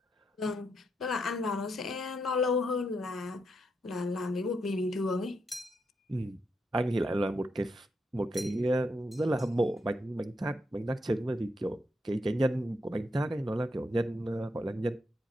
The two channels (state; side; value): normal; both; correlation 0.81